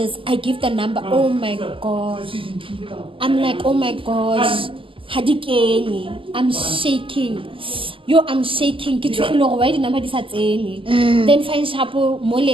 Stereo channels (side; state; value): left; late; 0.25 ms